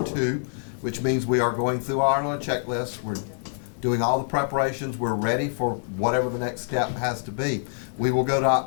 2, which means we are going through our checklist. We're doing all the preparations. We're ready for whatever the next step has to be. We will go to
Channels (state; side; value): silent; right; digital silence